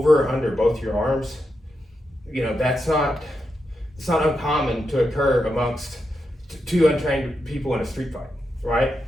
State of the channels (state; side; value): normal; both; correlation 0.86